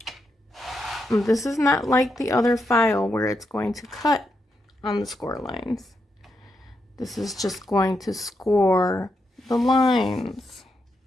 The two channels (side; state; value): both; normal; correlation 0.83